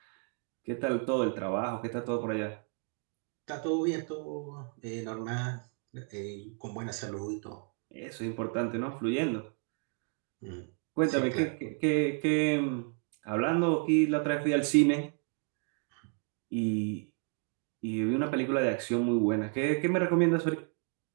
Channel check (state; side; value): quieter; left; 39.9 dB